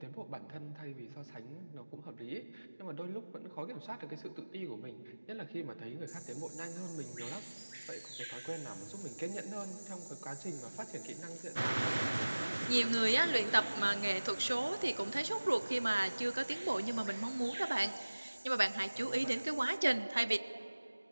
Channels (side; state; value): both; inverted; correlation -1.00